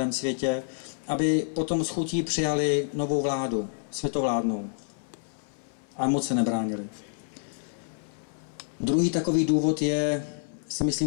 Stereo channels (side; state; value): right; silent; 59 dB below the other